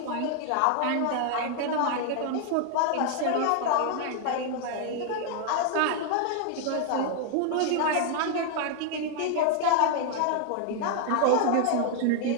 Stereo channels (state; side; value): different; both; correlation 0.00